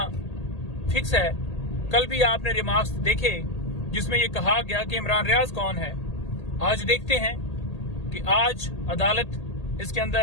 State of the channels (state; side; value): late; right; 1.8 ms